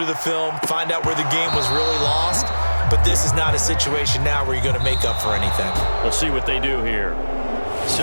the film, find out where the game was really lost. But this is not a situation now where you're going to make up for anything. We'll see what they do here.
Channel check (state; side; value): inverted; both; correlation -1.00